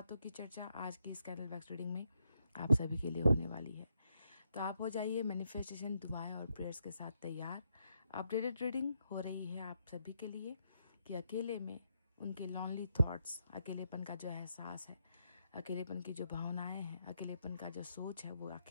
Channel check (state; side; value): inverted; both; correlation -0.79